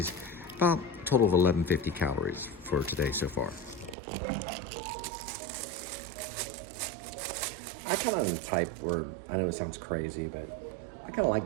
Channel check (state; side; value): drops out; left; at 4.0 s